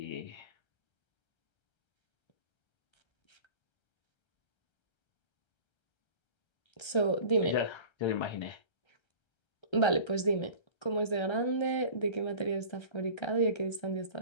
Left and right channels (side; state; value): right; late; 1.3 ms